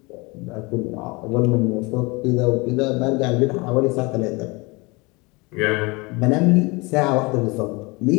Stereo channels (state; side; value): quieter; right; 26.2 dB